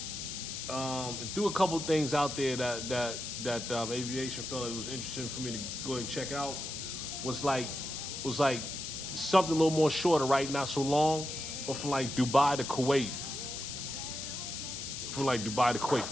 and threw a couple of things out there that aviation felt it was interesting for me to go ahead and check out. Was like something a little more shorter, right? Not so long, but from like Dubai to Kuwait. From like Dubai to Kuwait,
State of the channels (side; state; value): left; noise; hiss, 6 dB below the sound